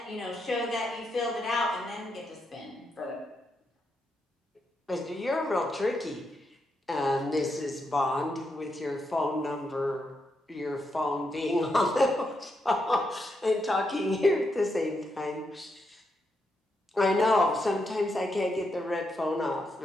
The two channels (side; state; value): both; normal; correlation 0.82